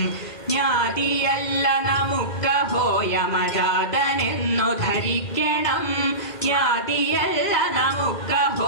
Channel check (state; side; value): late; right; 2.2 ms